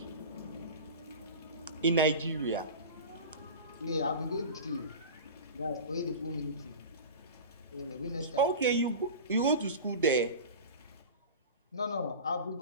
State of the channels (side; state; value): both; inverted; correlation -0.32